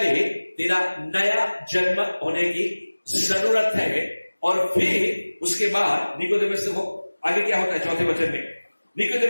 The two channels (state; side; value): inverted; both; correlation -1.00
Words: तेरा नया जन्म होने की जरूरत है। और फिर उसके बाद निकोदेमुस को आगे क्या होता है, चौथे वचन में